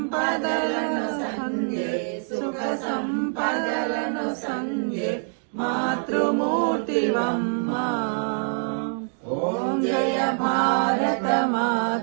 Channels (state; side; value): silent; left; 59 dB below the other